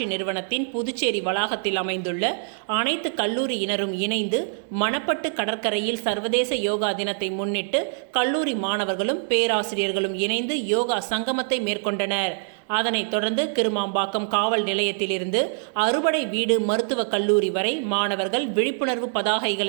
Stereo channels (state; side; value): silent; left; 62 dB below the other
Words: நிறுவனத்தின் புதுச்சேரி வளாகத்தில் அமைந்துள்ள அனைத்து கல்லூரியினரும் இணைந்து மணப்பட்டு கடற்கரையில் சர்வதேச யோகா தினத்தை முன்னிட்டு கல்லூரி மாணவர்களும் பேராசிரியர்களும் இணைந்து யோகா சங்கமத்தை மேற்கொண்டனர். அதனைத் தொடர்ந்து கிருமாம்பாக்கம் காவல் நிலையத்திலிருந்து அறுபடை வீடு மருத்துவக் கல்லூரி வரை மாணவர்கள் விழிப்புணர்வு